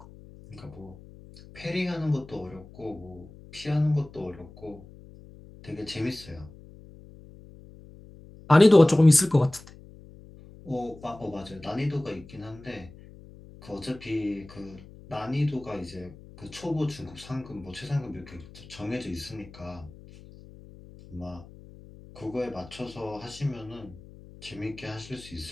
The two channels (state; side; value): noise; left; hum, 19 dB below the sound